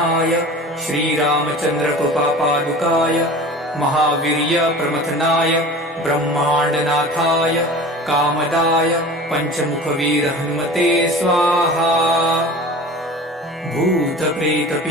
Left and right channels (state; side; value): normal; both; correlation 0.38